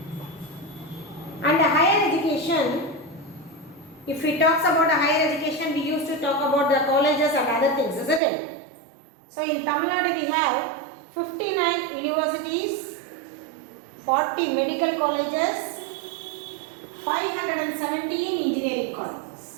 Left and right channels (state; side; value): drops out; left; at 8.2 s